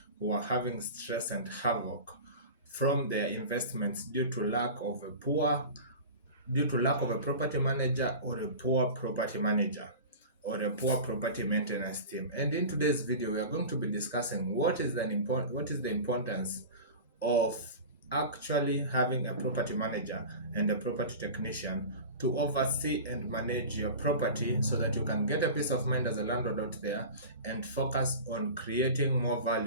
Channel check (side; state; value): both; inverted; correlation -0.34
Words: who are having stress and havoc from their investments due to lack of a property manager or a poor property manager or a poor property maintenance team. And in today's video, we are going to be discussing what is the importance of actually having a property manager and a property technician to oversee and manage your property so that you can get a peace of mind as a landlord out there and focus on creating more